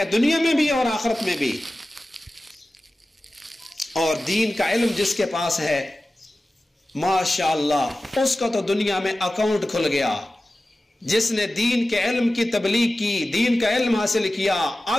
دنیا میں بھی اور آخرت میں بھی. اور دین کا علم جس کے پاس ہے ماشاءاللہ اس کا تو دنیا میں اکاؤنٹ کھل گیا. جس نے دین کے علم کی تبلیغ کی, دین کا علم حاصل کیا,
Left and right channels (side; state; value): both; normal; correlation 0.95